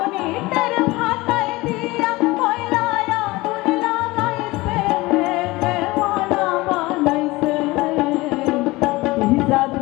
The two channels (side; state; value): right; quieter; 21.0 dB